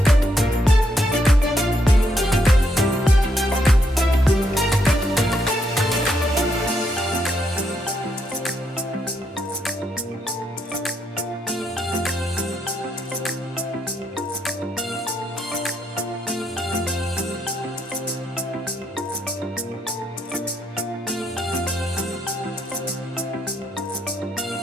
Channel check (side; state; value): both; normal; correlation 0.76